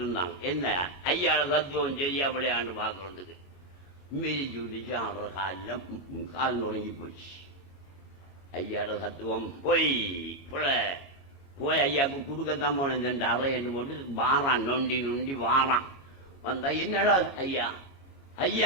இருந்தான். என்ன ஐயாவோட தத்துவம் சரியா விளையாண்டு பார்க்கறதுக்கு மிதிச்சு விட்டுச்சு. ஆடுற கால் நொறுங்கி போச்சு. ஐயாவோட தத்துவம் போய் போய் ஐயாவுக்கு கொடுக்கத்தான் போனேன். 2 அறை என்று போட்டு வாரான், நொண்டி நொண்டி வாரான். வந்தா, என்னடா ஐயா,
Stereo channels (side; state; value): right; late; 33 ms